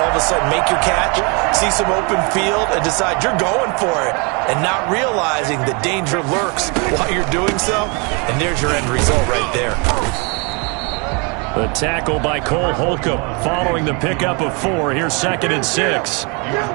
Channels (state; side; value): quieter; left; 32.4 dB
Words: all of a sudden make your catch, see some open field, and decide you're going for it, and not realizing the danger lurks while you're doing so. And there's your end result right there. The tackle by Cole Holcomb following the pickup of 4. Here's 2nd and 6. He was